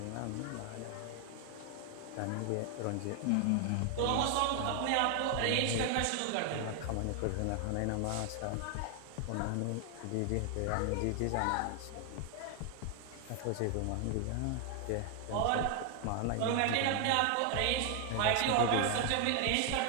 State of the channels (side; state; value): both; different; correlation 0.00